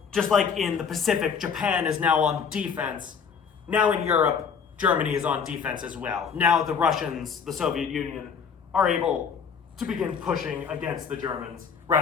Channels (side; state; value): right; quieter; 6.5 dB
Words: just like in the Pacific, Japan is now on defense. Now in Europe, Germany is on defense as well. Now the Russians, the Soviet Union, are able to begin pushing against the Germans